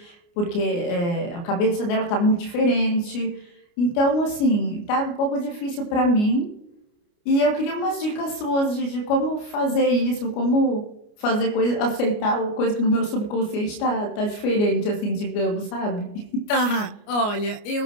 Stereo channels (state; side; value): late; right; 29 ms